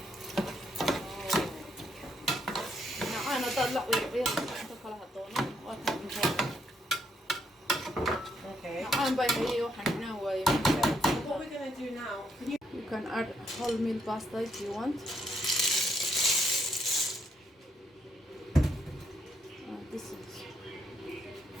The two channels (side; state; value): both; normal; correlation 0.74